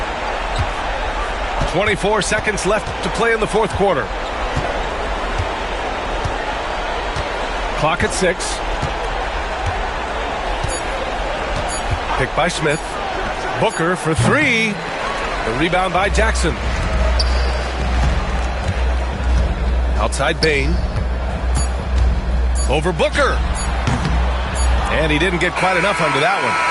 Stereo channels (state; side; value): identical; both; correlation 1.00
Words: 24 seconds left to play in the fourth quarter. Clock at 6. Picked by Smith. Booker for three. The rebound by Jackson. Outside Bain. Over Booker. And he didn't get quite enough under that one.